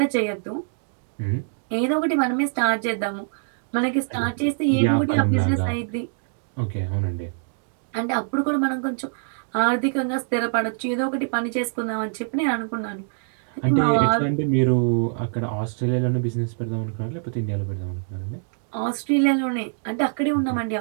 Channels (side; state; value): left; silent; digital silence